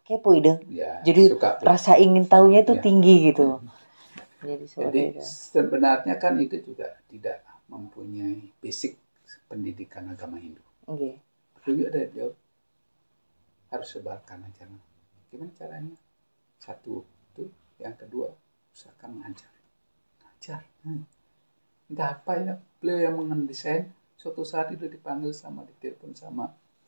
kepo ide. Ya, jadi rasa ingin tahunya itu tinggi gitu. Jadi sebenarnya kan itu juga tidak mempunyai basic pendidikan agama Hindu. Juga dari beliau harus sebarkan ajaran. Gimana caranya? Satu itu, yang kedua usahakan mengajar. Entah apa ya, beliau yang mendesain. Suatu saat itu dipanggil ditelepon sama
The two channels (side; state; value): both; inverted; correlation -1.00